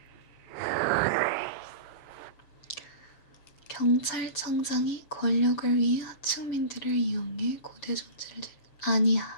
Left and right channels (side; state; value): right; late; 7.0 ms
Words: 경찰청장이 권력을 위해 하층민들을 이용해 고대 존재를